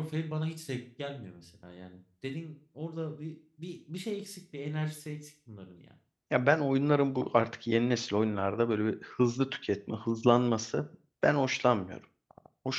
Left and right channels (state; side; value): identical; both; correlation 1.00